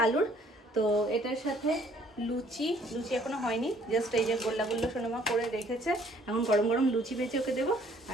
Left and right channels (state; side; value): normal; both; correlation 0.61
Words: আলুর। তো এটার সাথে লুচি এখনো হয়নি, জাস্ট এই যে গোল্লা সোনামা করে রেখেছে, এখন গরম গরম লুচি ভেজে ওকে দেবো।